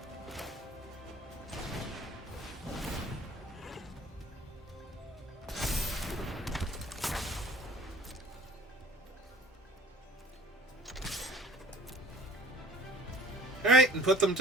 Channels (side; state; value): both; normal; correlation 0.47